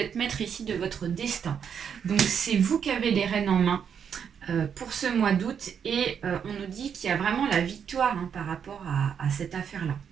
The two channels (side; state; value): left; quieter; 7.6 dB